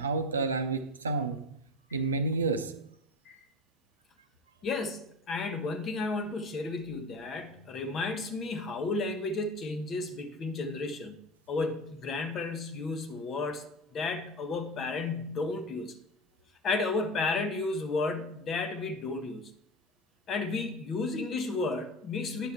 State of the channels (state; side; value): normal; both; correlation 0.28